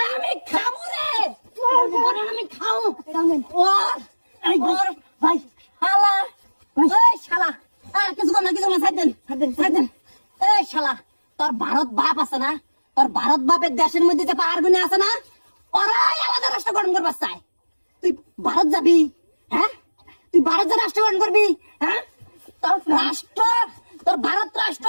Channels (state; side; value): inverted; both; correlation -1.00